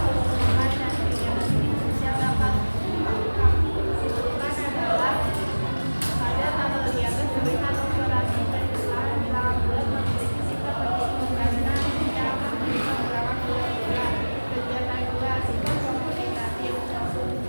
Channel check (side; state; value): both; inverted; correlation -1.00